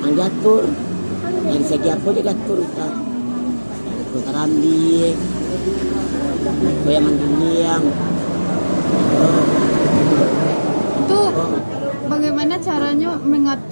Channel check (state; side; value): inverted; both; correlation -1.00